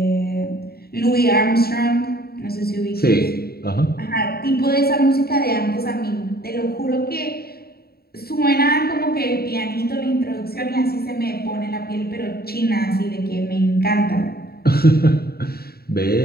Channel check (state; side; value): late; right; 0.45 ms